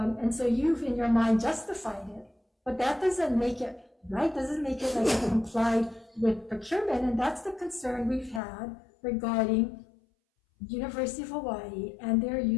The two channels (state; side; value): drops out; right; at 8.4 s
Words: so you've, in your mind, justified it. But that doesn't make it right, doesn't make it like it complied with procurement. And that's the concern we've had regarding University of Hawaii and their